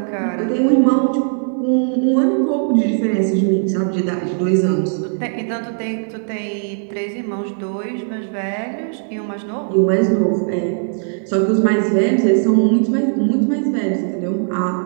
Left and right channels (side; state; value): left; silent; 63 dB below the other